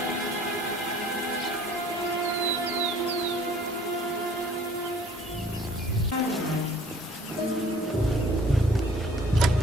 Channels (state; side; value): normal; both; correlation 0.53